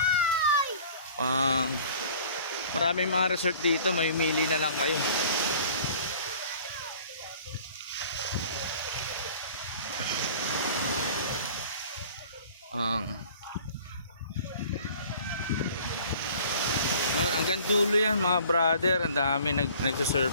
Maraming mga resort dito. May mili na lang kayo. Hanggang dulo yan mga brother, ang dami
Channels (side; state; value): both; inverted; correlation -0.49